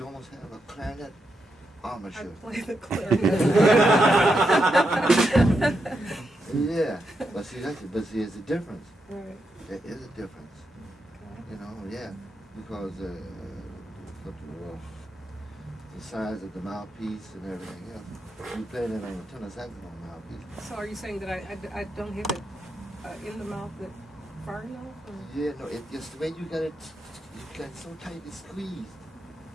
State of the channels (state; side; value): normal; both; correlation 0.84